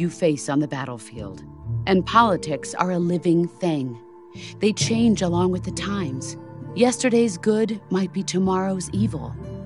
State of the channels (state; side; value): identical; both; correlation 1.00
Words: face on the battlefield. And politics are a living thing. They change along with the times. Yesterday's good might be tomorrow's evil.